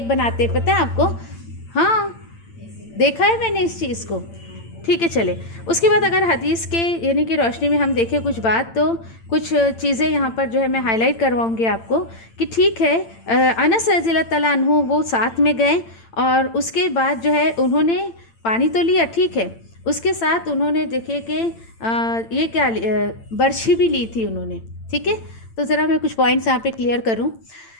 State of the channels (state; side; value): late; right; 8.9 ms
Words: بناتے ہیں، پتہ ہے آپ کو؟ ہاں دیکھا ہے میں نے اس چیز کو، ٹھیک ہے۔ چلے اس کے بعد اگر حدیث کے کہ روشنی میں ہم دیکھیں کچھ بات، تو کچھ چیزیں یہاں پر جو ہے میں ہائی لائٹ کرواؤں گی آپ کو کہ ٹھیک ہے انس رضی اللہ تعالیٰ عنہ وہ ساتھ میں گئے، اور اس کے بعد جو ہے انہوں نے پانی تو لیا، ٹھیک ہے، اس کے ساتھ انہوں نے دیکھے کہ یہ کیا برچھی بھی لی تھی انہوں نے، ٹھیک ہے۔ تو ذرا میں کچھ پوائنٹس یہاں پہ کلیئر کروں۔